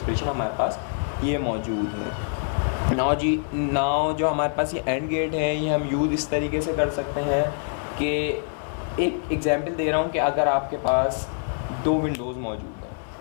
हमारे पास ये मौजूद है। नाउ जो हमारे पास ये एंड गेट है ये हम यूज़ इस तरीके से कर सकते हैं कि एक एग्जांपल दे रहा हूँ कि अगर आपके पास 2 विंडोज़ मौजूद हैं,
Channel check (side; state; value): right; silent; 61 dB below the other